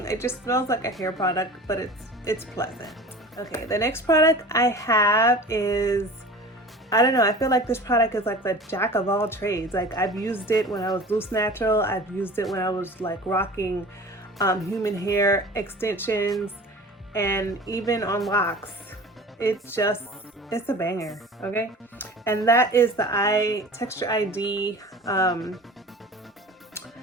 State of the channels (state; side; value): normal; both; correlation 0.39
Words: It just smells like a hair product, but it's pleasant. Okay, the next product I have is, I don't know, I feel like this product is like the jack of all trades. Like, I've used it when I was loose natural. I've used it when I was like rocking human hair extensions, and even on locks. It's a banger, okay? And that is the Texture ID